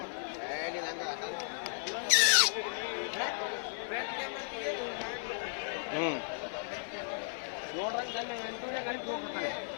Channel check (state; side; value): silent; right; 54 dB below the other